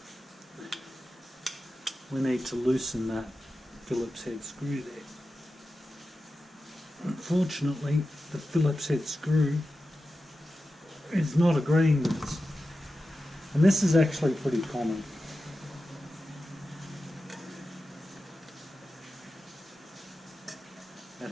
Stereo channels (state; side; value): normal; both; correlation 0.92